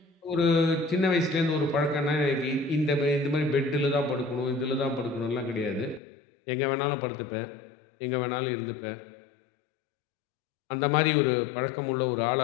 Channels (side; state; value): right; drops out; at 6.0 s